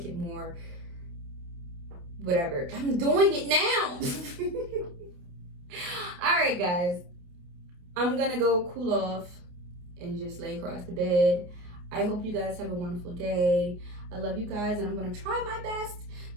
it more whatever. I'm doing it now. All right, guys. I'm gonna go cool off and just lay across the bed. I hope you guys have a wonderful day. I love you guys, and I'm gonna try my best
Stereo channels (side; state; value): left; late; 28 ms